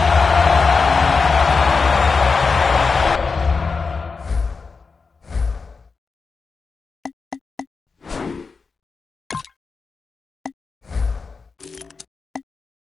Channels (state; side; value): quieter; right; 4.7 dB